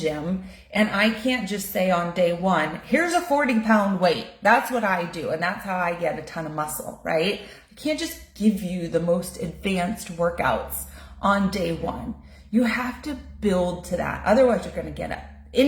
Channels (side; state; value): both; identical; correlation 1.00